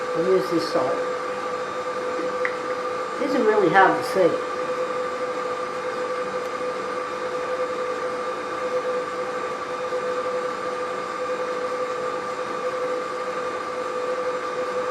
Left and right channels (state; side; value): identical; both; correlation 1.00